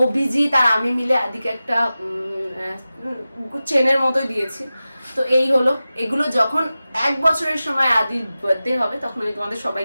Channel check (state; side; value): inverted; both; correlation -0.95